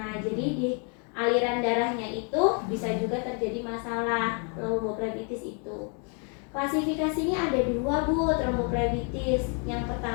jadi di aliran darahnya itu bisa juga terjadi masalah tromboflebitis itu. Klasifikasinya ada 2 Bu, tromboflebitis. Yang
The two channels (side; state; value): right; quieter; 39.1 dB